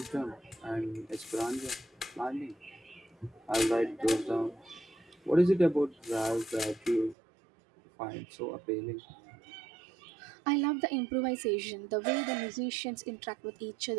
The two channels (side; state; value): left; drops out; at 7.2 s